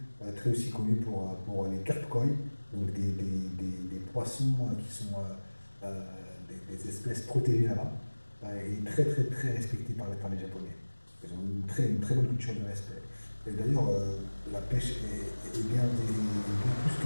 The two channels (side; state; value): both; inverted; correlation -1.00